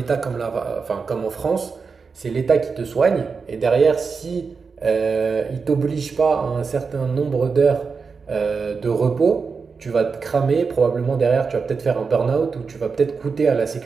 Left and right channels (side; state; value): left; quieter; 5.1 dB